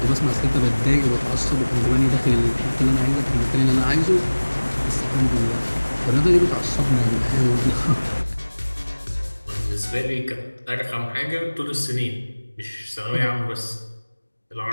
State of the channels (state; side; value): inverted; both; correlation -1.00